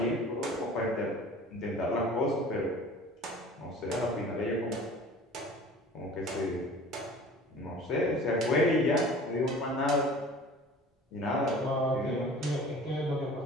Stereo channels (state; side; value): normal; both; correlation 0.44